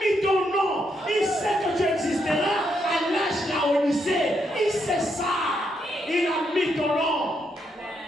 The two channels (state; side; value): normal; both; correlation 0.78